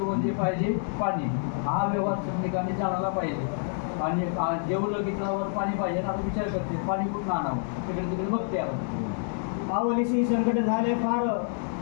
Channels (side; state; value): right; silent; 60 dB below the other